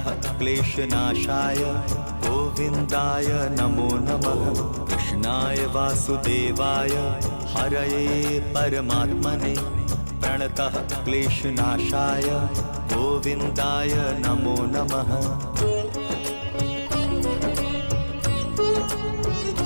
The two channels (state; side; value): inverted; both; correlation -1.00